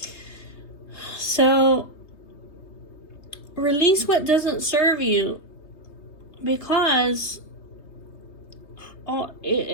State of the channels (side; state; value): right; late; 3.2 ms